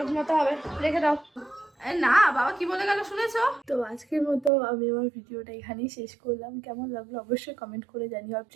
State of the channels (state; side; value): drops out; left; at 4.5 s